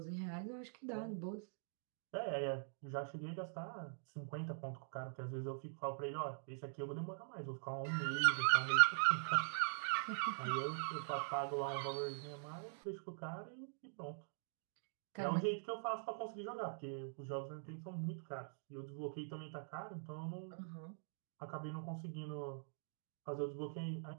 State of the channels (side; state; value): left; silent; digital silence